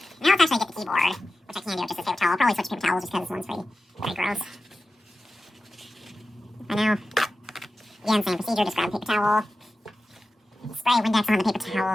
now let's actually get the keyboard, which I can do with just this paper towel. I'll probably switch to paper towels just because this one's pretty gross. I know. Again, same procedure, just grab a paper towel, spray Windex on the paper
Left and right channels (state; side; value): normal; both; correlation 0.94